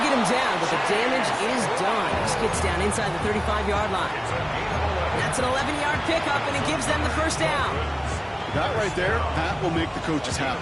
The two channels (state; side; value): identical; both; correlation 1.00